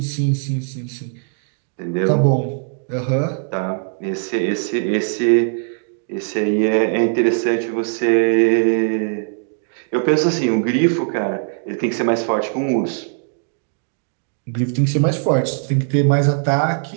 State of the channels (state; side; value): silent; left; digital silence